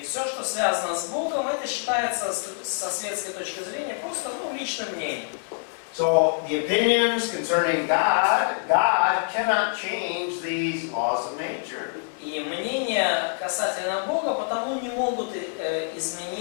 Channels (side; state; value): right; silent; 60 dB below the other